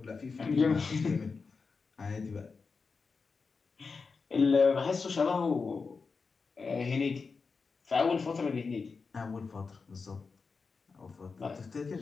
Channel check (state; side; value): quieter; right; 4.8 dB